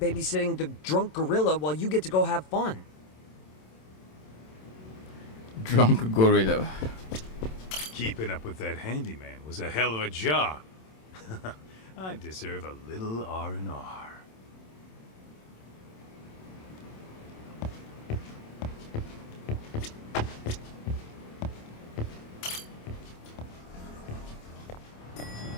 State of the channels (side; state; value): right; late; 27 ms